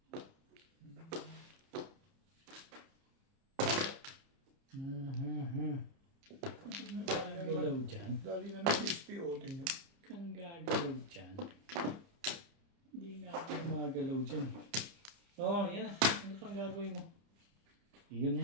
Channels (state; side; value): late; left; 30 ms